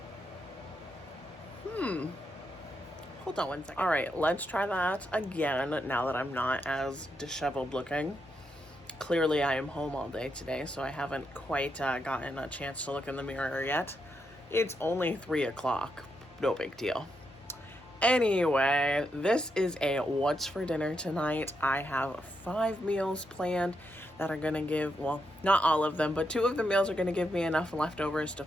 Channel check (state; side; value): normal; both; correlation 0.82